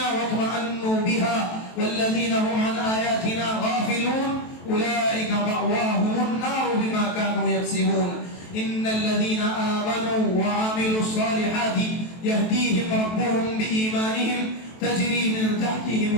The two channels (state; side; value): late; right; 23 ms